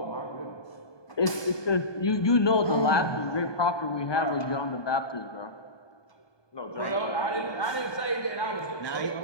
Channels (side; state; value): right; late; 1.2 ms